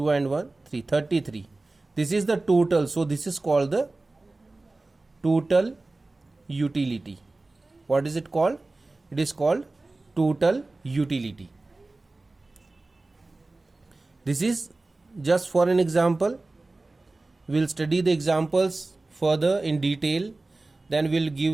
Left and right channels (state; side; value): quieter; left; 3.2 dB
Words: and 1 3 33. This is the total. So this is called the total utility. What is it called? It is called total utility. This is just for an example. We'll study the examples further in detail, then we'll